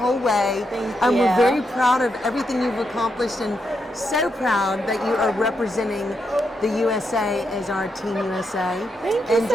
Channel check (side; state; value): both; normal; correlation 0.82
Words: way. Thank We're you. very proud of everything you've accomplished and so proud that you are representing the USA as our Team USA. Thank you and